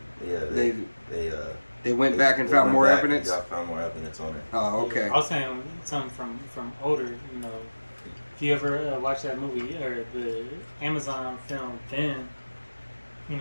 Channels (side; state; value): both; inverted; correlation -1.00